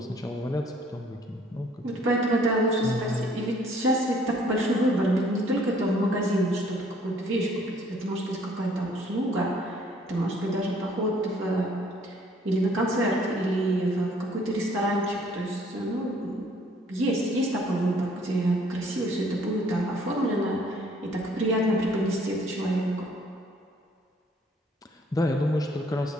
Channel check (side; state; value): both; normal; correlation 0.60